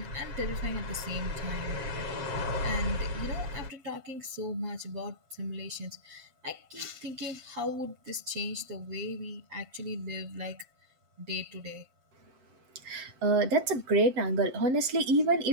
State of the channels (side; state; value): left; late; 7.7 ms